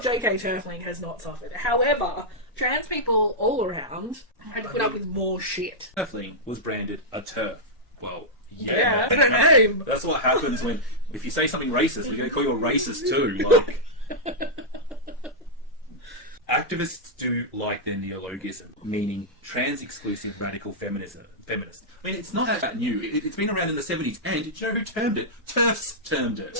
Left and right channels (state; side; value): normal; both; correlation -0.08